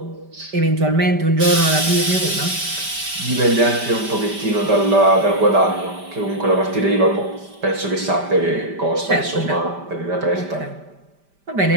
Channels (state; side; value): late; left; 5.1 ms